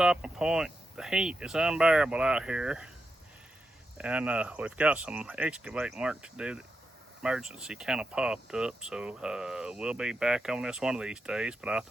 point. The heat is unbearable out here, and we've got some excavating work to do emergency kind of popped up, so we'll be back on this one of these days. But I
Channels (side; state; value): both; normal; correlation 0.86